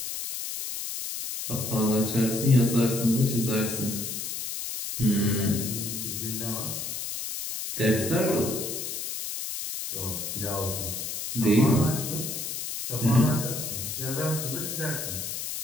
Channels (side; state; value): left; noise; hiss, 5 dB below the sound